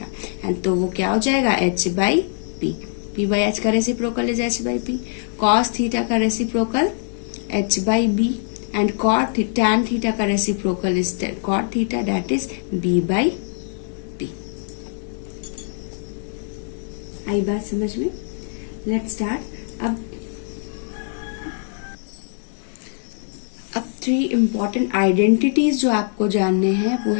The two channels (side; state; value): right; silent; 62 dB below the other